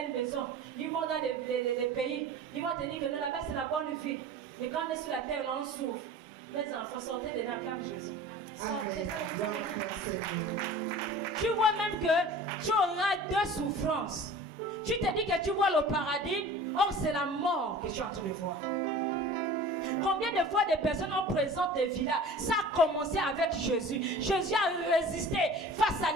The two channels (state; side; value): normal; both; correlation 0.41